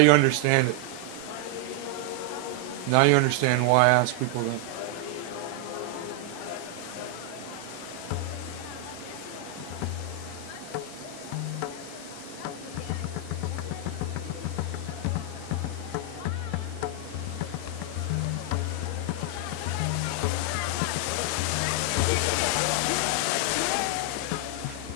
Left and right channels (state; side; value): different; both; correlation 0.00